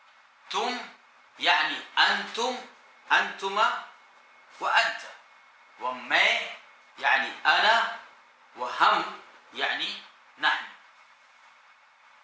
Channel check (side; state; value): both; identical; correlation 1.00